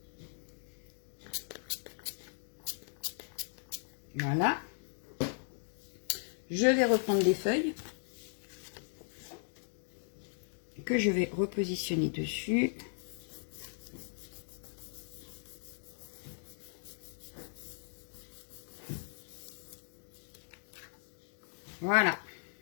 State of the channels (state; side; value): silent; right; digital silence